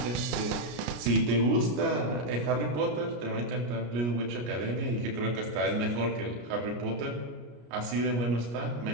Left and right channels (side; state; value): left; late; 33 ms